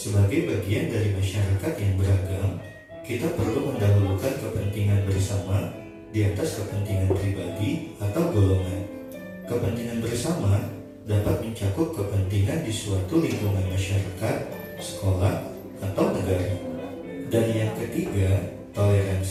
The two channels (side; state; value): both; identical; correlation 1.00